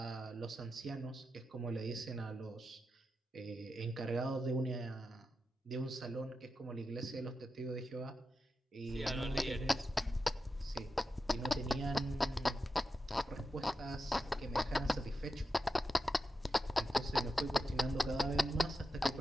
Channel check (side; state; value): both; normal; correlation 0.89